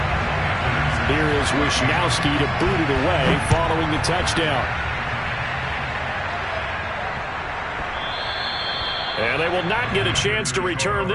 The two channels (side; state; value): both; identical; correlation 1.00